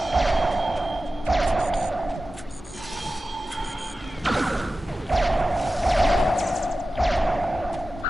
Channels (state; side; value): normal; both; correlation 0.95